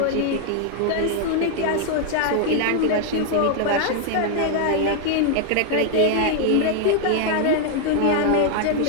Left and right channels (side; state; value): both; different; correlation 0.00